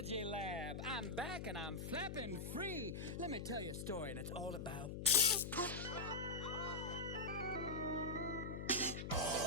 lab. I'm back and I'm flapping free. Let me tell you a story, and it's all about...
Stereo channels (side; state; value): left; noise; hum, 5 dB below the sound